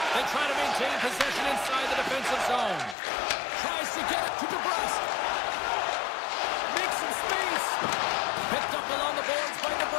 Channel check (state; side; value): drops out; right; at 3.0 s